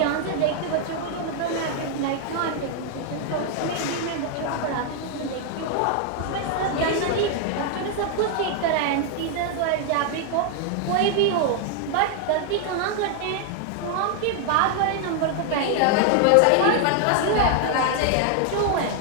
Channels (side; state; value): both; different; correlation 0.00